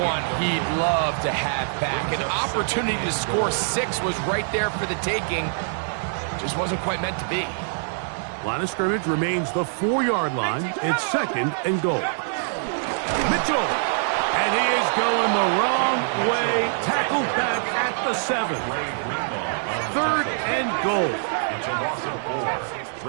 he'd love to have back. An opportunity to score 6 was right there for the taking. Just wasn't quite meant to be. Line of scrimmage remains the 4-yard line. It's 2nd and goal. Mitchell. And he is going the wrong way. Tackled back at the 7. 3rd and goal. It's a loss of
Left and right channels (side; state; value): left; silent; 61 dB below the other